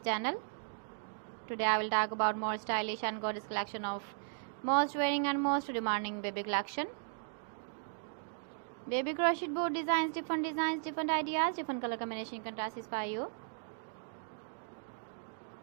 channel. Today I will talk about more stylish and gorgeous collection of most wearing and most demanding baby collection. Baby crochet board designs, different ideas, different color combination can satisfy you.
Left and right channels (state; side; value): silent; left; digital silence